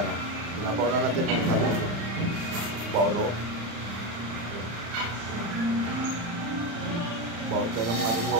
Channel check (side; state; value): left; late; 35 ms